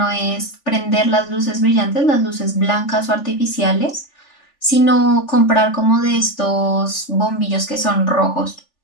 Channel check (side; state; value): right; late; 3.4 ms